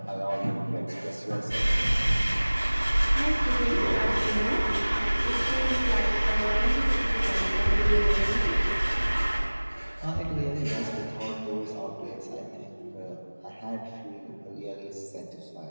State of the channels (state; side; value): inverted; both; correlation -1.00